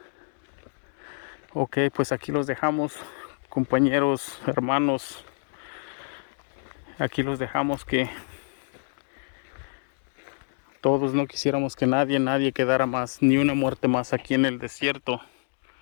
Ok, pues aquí los dejamos, compañeros, hermanos. Aquí los dejamos, que todos no quisiéramos que nadie quedara más, ni una muerte más aquí en el desierto.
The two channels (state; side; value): silent; right; digital silence